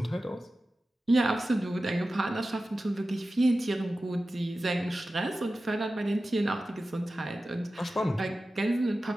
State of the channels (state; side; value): normal; both; correlation 0.94